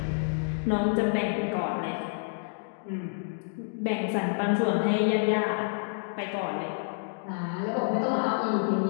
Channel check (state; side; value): silent; right; digital silence